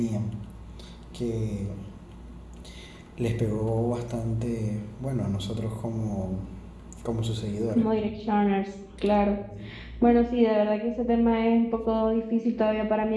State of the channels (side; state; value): both; identical; correlation 1.00